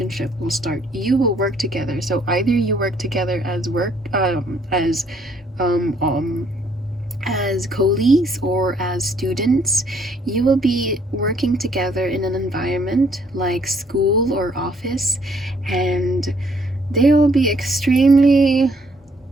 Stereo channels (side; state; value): both; normal; correlation 0.66